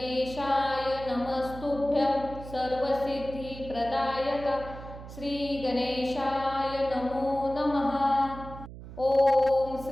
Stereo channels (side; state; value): right; noise; hum, 13 dB below the sound